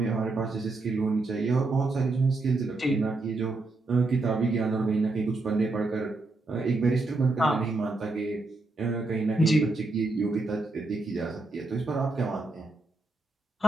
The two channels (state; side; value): quieter; left; 3.3 dB